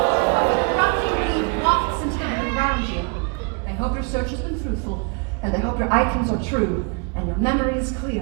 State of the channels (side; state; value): left; quieter; 35.6 dB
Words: erupting beam wafts into the room around you. I hope your search has been fruitful, and I hope your items are true, and your memory is